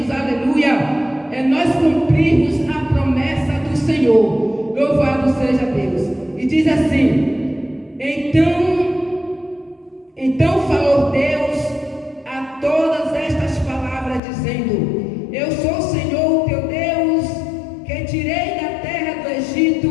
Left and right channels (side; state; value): right; drops out; at 14.2 s